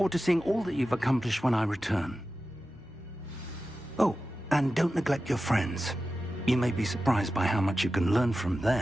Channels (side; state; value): both; normal; correlation 0.93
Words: to seeing all that you've accomplished when I return. Oh, and don't neglect your friends. You may be surprised by how much you can learn from